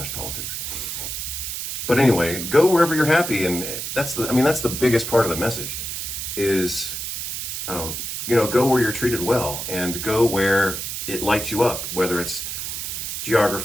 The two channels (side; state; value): right; noise; hiss, 5 dB below the sound